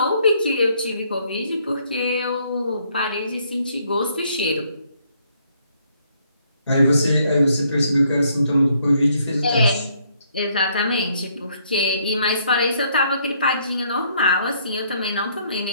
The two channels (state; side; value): inverted; both; correlation -0.69